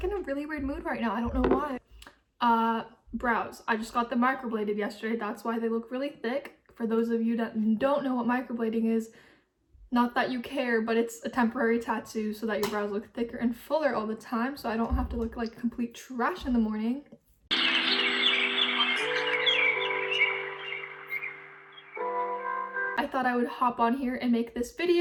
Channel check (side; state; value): both; identical; correlation 1.00